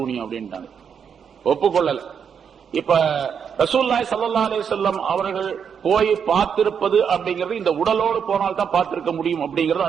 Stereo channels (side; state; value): left; quieter; 7.2 dB